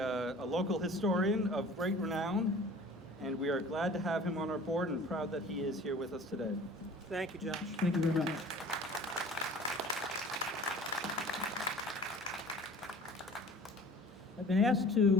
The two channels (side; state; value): both; normal; correlation 0.45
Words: local historian of great renown, and we are glad to have him on our board and proud that he is here with us today. Thank you, Josh. Thank you very much. I've been asked